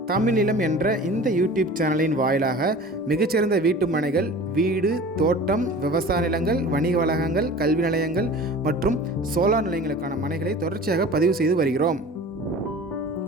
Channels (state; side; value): normal; both; correlation 0.40